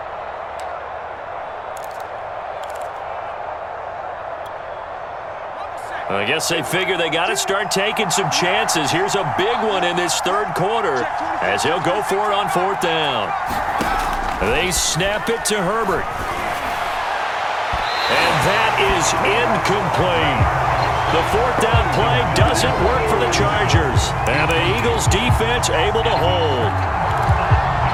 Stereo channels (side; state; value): both; identical; correlation 1.00